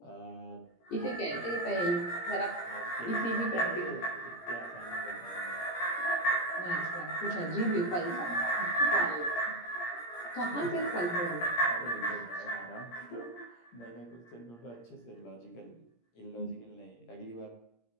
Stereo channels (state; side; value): late; right; 17 ms